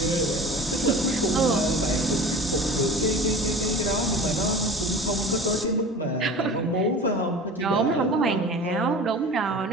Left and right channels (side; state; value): both; normal; correlation 0.38